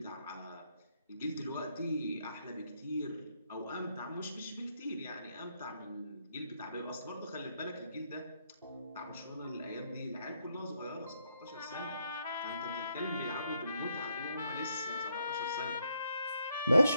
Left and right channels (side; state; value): both; inverted; correlation -0.76